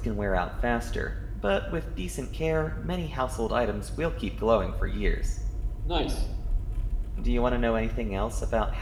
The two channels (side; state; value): both; identical; correlation 1.00